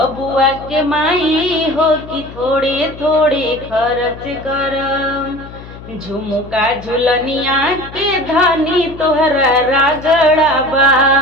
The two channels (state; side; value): noise; left; hum, 16 dB below the sound